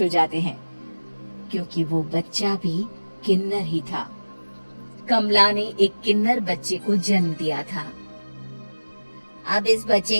हो जाते हैं, क्योंकि वो बच्चा भी किन्नर ही था। कमला ने एक किन्नर बच्चे को जन्म दिया था। अब इस बच्चे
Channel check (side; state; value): both; inverted; correlation -1.00